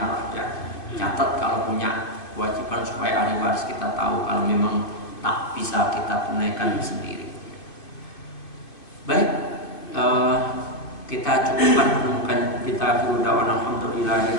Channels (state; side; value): late; right; 2.5 ms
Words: ya. Catat kalau punya kewajiban supaya ahli waris kita tahu kalau memang tak bisa kita tunaikan sendiri. Baik, kita cukupkan menemukan kita dulu dawan